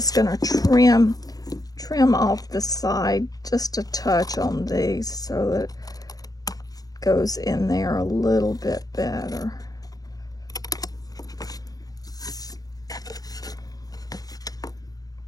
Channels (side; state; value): right; late; 0.18 ms